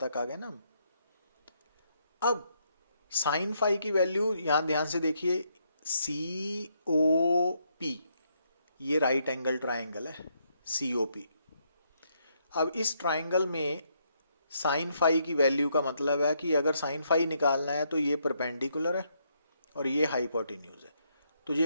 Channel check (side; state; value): both; inverted; correlation -0.75